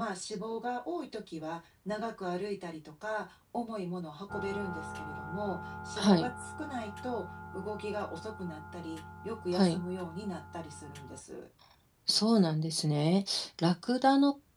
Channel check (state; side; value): identical; both; correlation 1.00